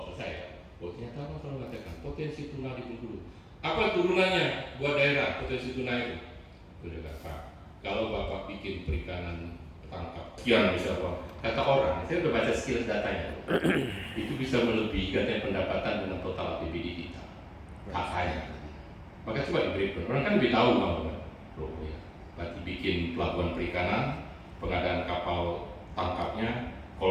selesai. Oh ternyata apa kalau mengatakan potensi tuna di Bengkulu. Apa turunannya buat daerah potensi tuna itu? Sudah Pak. Kalau Bapak bikin perikanan tangkap sekian bisa Pak. Kata orang, saya udah baca skill datanya. Itu bisa melebihi katanya pendapatan dengan total APBD kita. hak saya. Maka coba diberi, orang kan lebih tahu kamu kan, ya. Berarti bikin pelabuhan perikanan, pengadaan kapal tangkapnya,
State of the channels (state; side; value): identical; both; correlation 1.00